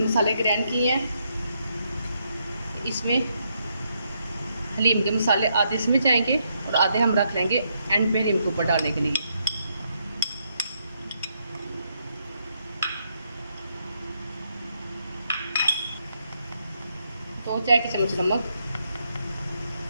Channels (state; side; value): inverted; both; correlation -0.77